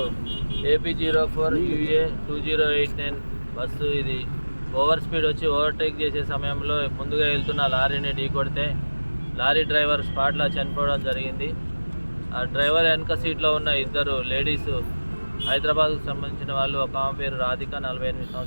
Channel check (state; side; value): inverted; both; correlation -1.00